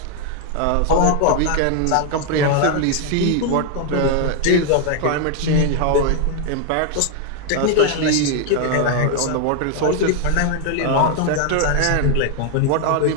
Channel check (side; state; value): both; different; correlation 0.00